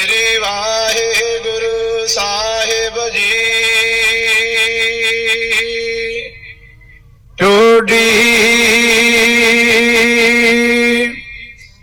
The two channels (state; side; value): identical; both; correlation 1.00